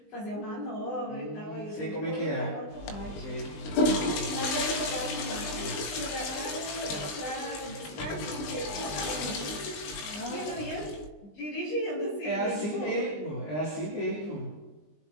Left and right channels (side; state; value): right; late; 20 ms